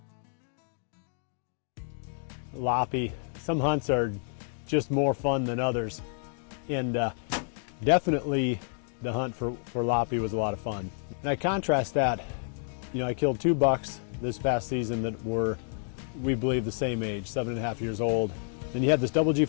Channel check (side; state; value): right; silent; digital silence